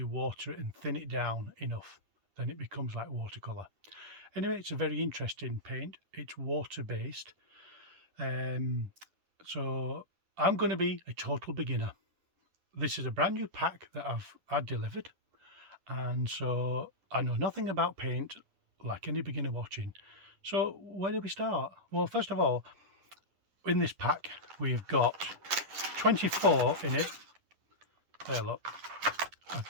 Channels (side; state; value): left; late; 10 ms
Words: water it and thin it down enough, then it becomes like watercolour. Anyway, it's a very interesting paint. It's water based. So I'm going to be a total beginner. This is a brand new pack that I've had delivered, and so I know nothing about paint like any beginner watching. So where do we start? Well, first of all, in this pack we've got 24 in it. There, look,